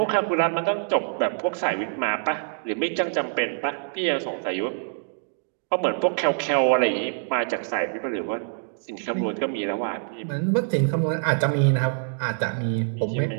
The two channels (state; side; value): silent; left; 62 dB below the other